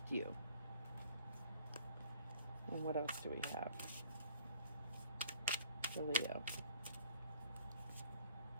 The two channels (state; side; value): inverted; both; correlation -0.53